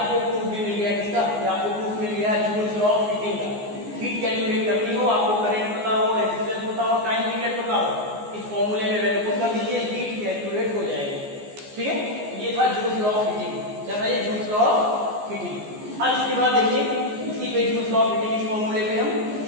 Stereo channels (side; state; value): left; late; 14 ms